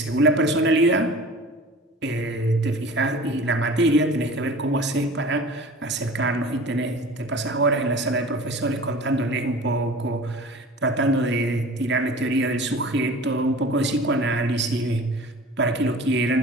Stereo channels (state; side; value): normal; both; correlation 0.41